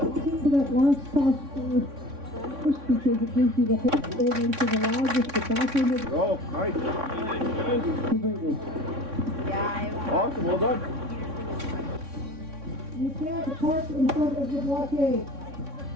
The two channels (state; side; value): late; left; 3.6 ms